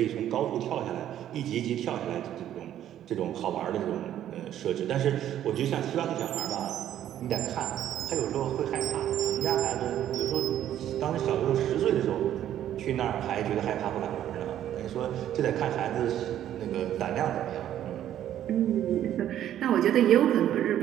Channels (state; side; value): quieter; left; 11.4 dB